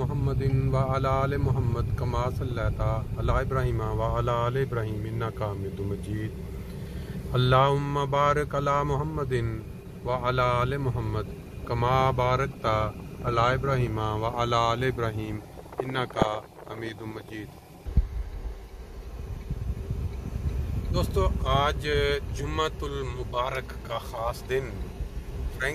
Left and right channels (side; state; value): both; identical; correlation 1.00